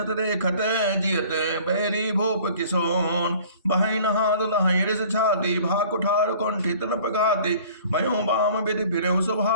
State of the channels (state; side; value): inverted; both; correlation -0.50